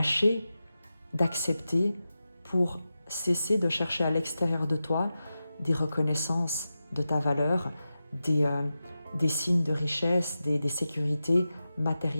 d'accepter pour cesser de chercher à l'extérieur de toi des reconnaissances de ta valeur, des signes de richesse, des sécurités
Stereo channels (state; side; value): inverted; both; correlation -0.92